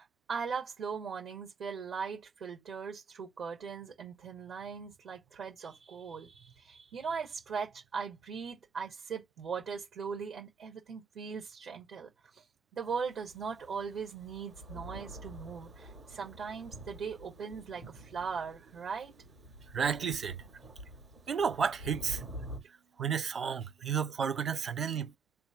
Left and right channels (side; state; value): left; quieter; 5.8 dB